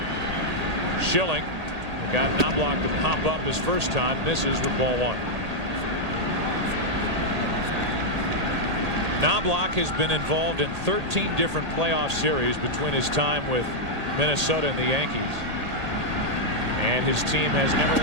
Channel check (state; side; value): late; left; 1.8 ms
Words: Schilling got Knobloch to pop up his first time, misses with ball 1. Knobloch has been involved in 13 different playoff series between his time with Minnesota and the Yankees, and his team has never